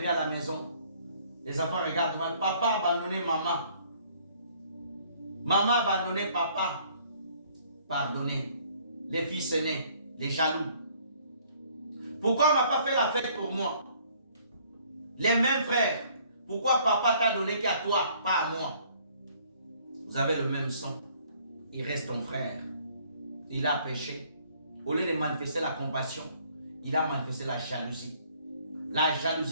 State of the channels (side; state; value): both; inverted; correlation -0.60